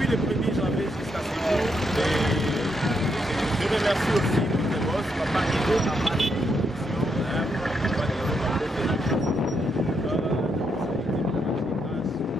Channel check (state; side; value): normal; both; correlation 0.79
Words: le 1er janvier jusqu'à ce jour. Je remercie aussi notre boss, Papa Ido,